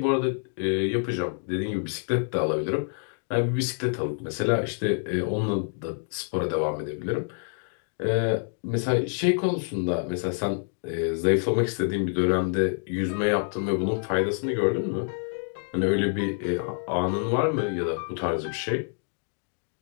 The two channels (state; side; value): silent; right; 58 dB below the other